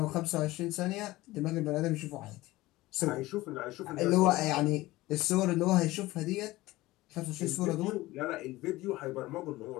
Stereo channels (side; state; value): right; quieter; 18.5 dB